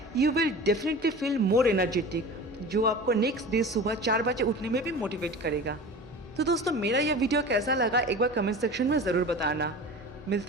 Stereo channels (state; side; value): normal; both; correlation 0.36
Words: you will definitely feel more energetic, जो आपको नेक्स्ट डे सुबह 4 बजे उठने में भी मोटिवेट करेगा। तो दोस्तों मेरा यह वीडियो कैसा लगा एक बार कमेंट सेक्शन में ज़रूर बताना।